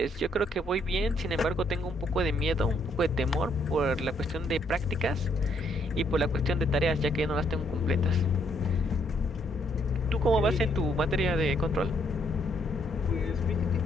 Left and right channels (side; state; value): both; normal; correlation 0.70